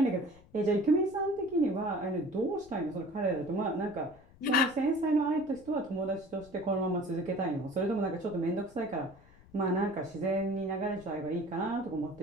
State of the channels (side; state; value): left; noise; rumble, 24 dB below the sound